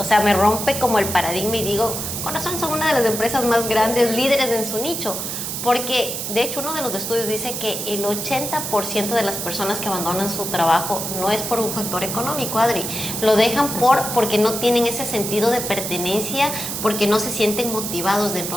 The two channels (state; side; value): noise; right; hiss, 4 dB below the sound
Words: sea, me rompe como el paradigma y digo, con razón son una de las empresas más grandes, líderes en su nicho. Porque, de hecho, uno de los estudios dice que el 80% de las personas que abandonan su trabajo no es por un factor económico, Adri. Lo dejan porque no tienen ese sentido de pertenencia, porque no se sienten motivados